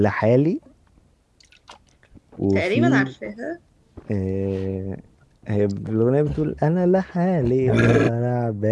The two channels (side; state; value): both; identical; correlation 1.00